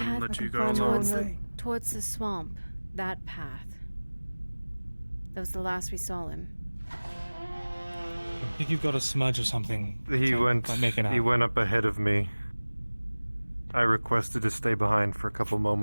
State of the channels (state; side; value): inverted; both; correlation -1.00